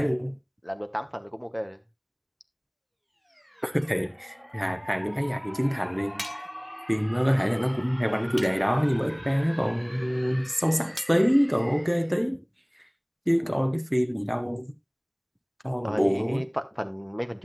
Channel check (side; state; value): both; identical; correlation 1.00